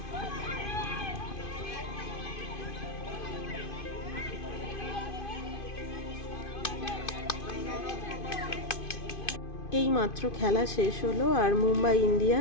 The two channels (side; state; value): right; late; 2.5 ms